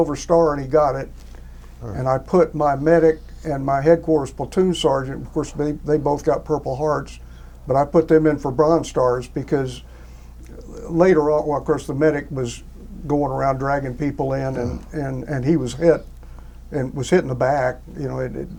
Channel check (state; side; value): identical; both; correlation 1.00